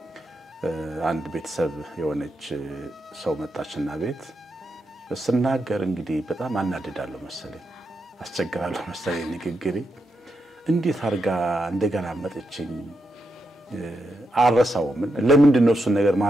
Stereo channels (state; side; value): normal; both; correlation 0.84